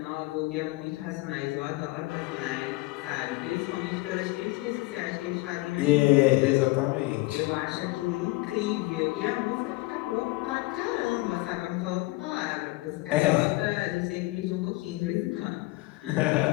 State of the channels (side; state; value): right; quieter; 21.8 dB